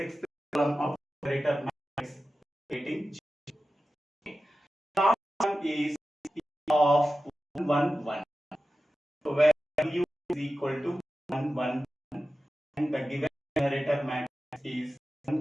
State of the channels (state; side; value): normal; both; correlation 0.94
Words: column of generator matrix. Getting 0. Last one is of 1 1 1. So where u is equal to 1 1 1 and the given generator matrix is